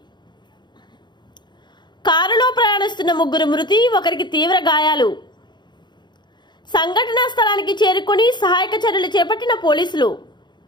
కారులో ప్రయాణిస్తున్న 3 మృతి, 1కి తీవ్ర గాయాలు. సంఘటనా స్థలానికి చేరుకొని సహాయక చర్యలు చేపట్టిన పోలీసులు.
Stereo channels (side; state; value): right; late; 0.21 ms